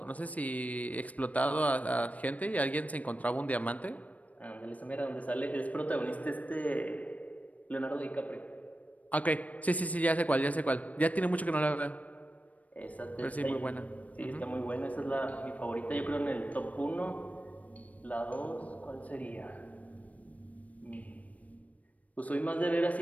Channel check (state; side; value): late; right; 0.070 ms